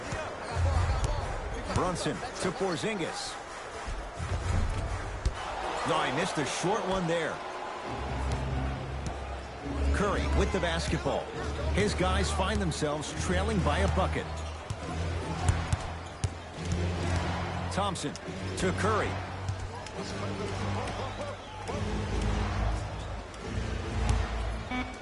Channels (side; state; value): both; identical; correlation 1.00